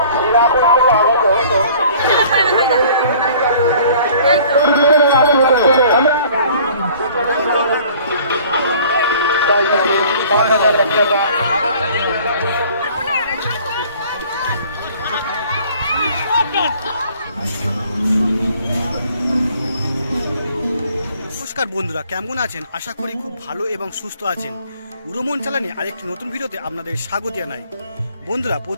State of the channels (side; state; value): both; inverted; correlation -0.53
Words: নমস্কার বন্ধুরা, কেমন আছেন? আশা করি খুব ভালো এবং সুস্থ আছেন। উড়োমন চালানে আরেকটি নতুন ভিডিওতে আপনাদের স্বাগত জানাই। বন্ধুরা,